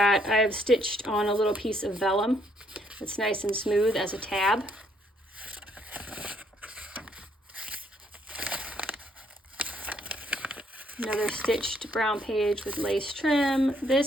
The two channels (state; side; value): normal; both; correlation 0.69